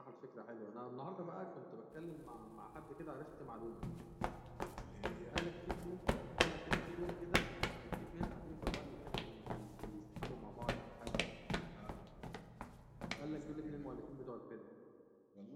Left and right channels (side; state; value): both; identical; correlation 1.00